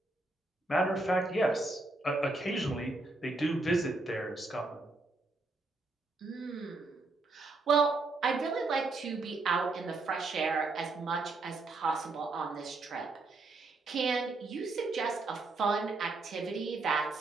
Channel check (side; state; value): left; quieter; 3.3 dB